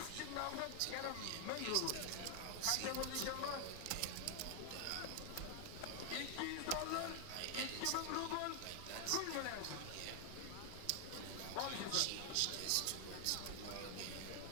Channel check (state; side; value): different; both; correlation 0.00